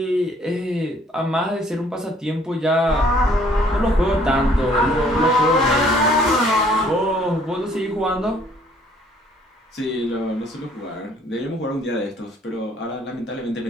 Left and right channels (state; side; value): normal; both; correlation 0.60